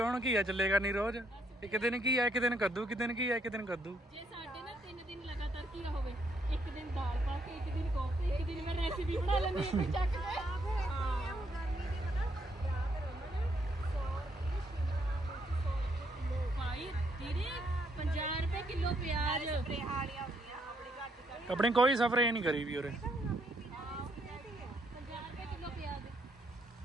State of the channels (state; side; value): normal; both; correlation 0.73